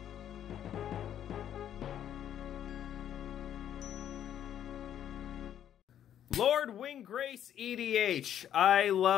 Lord Windgrace EDH. I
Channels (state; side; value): quieter; right; 10.3 dB